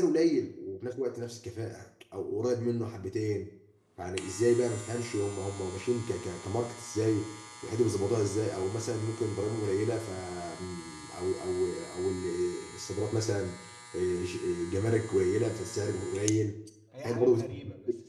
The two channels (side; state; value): both; identical; correlation 1.00